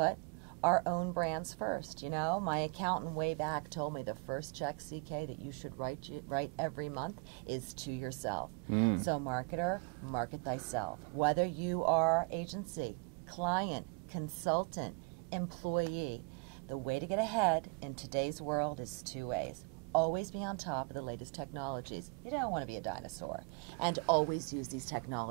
our own brands first? You know, my accountant way back told me the first check, CK, that you should write every month is to yourself. So marketer, market thyself. Whether you are agency, client, consultant, employee, the way to get ahead in today's world is two ways. Always be on top of the latest technologies. You don't want to be a dinosaur. And always use these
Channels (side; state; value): left; quieter; 32.0 dB